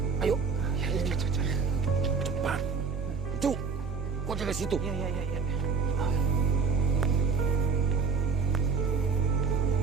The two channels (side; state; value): left; quieter; 4.8 dB